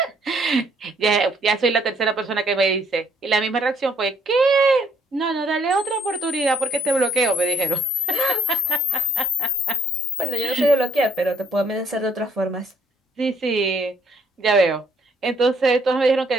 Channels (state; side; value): normal; both; correlation 0.65